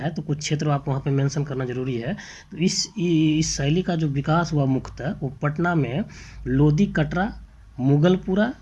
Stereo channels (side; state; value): both; identical; correlation 1.00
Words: तो कुछ क्षेत्र आप वहाँ पे मेंशन करना ज़रूरी है। तो इस शैली का जो विकास हुआ मुख्यतः वो पटना में लोधी कटरा, मुगलपुरा,